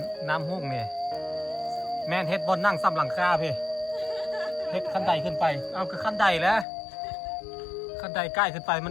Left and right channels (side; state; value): right; drops out; at 6.7 s